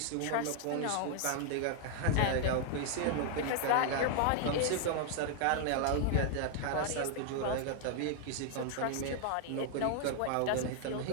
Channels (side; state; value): both; different; correlation 0.00